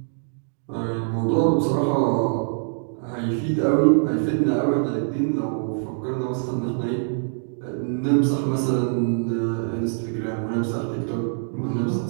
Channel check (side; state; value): left; silent; digital silence